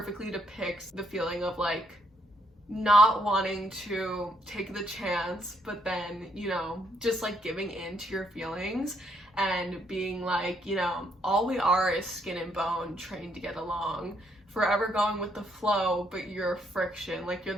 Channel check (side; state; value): both; normal; correlation 0.72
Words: depicts the feeling of like not wanting to take the chance, but then, you know, just like giving in to your feelings. and being like, you know, all we are is skin and bone trained to get along, forever going with the flow, but you're friction. Like, you're